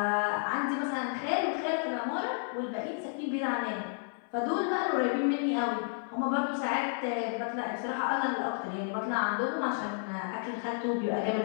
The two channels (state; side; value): silent; right; 57 dB below the other